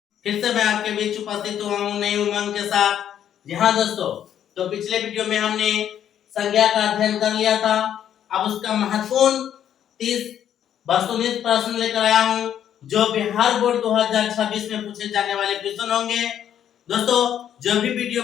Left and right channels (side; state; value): right; quieter; 10.0 dB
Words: फिर से मैं आपके बीच उपस्थित हुआ हूँ नई उमंग के साथ। जी हाँ दोस्तों, तो पिछले वीडियो में हमने संज्ञा का अध्ययन कर लिया था। अब उसका महत्वपूर्ण 30 वस्तुनिष्ठ प्रश्न लेकर आया हूँ जो बिहार बोर्ड 2026 में पूछे जाने वाले क्वेश्चन होंगे। दोस्तों, जो भी वीडियो